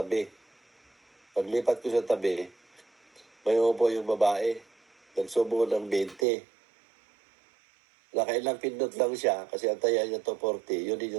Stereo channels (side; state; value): left; drops out; at 6.2 s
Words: Paglipat ko sa tabi, may upo yung babae. Nagsubo ng 20. Nakailang pindot lang siya kasi ang taya niya to 40. Yun din